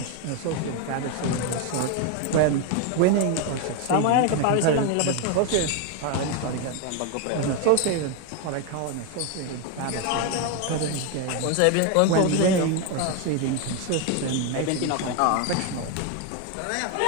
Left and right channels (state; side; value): different; both; correlation 0.01